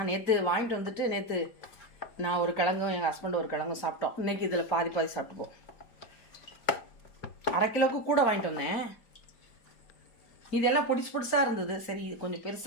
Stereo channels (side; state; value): right; late; 4.4 ms